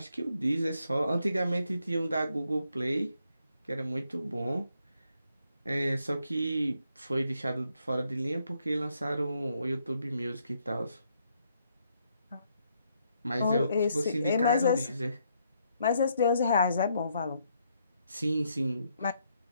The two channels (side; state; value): both; inverted; correlation -0.75